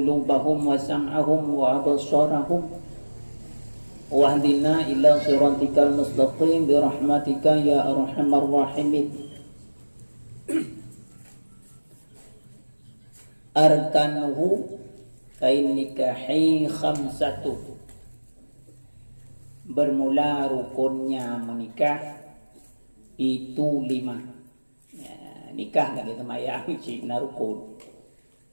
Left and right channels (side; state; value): both; inverted; correlation -1.00